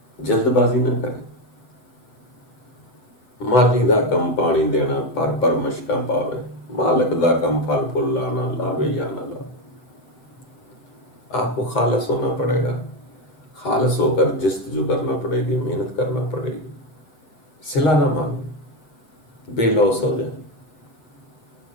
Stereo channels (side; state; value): right; late; 7.9 ms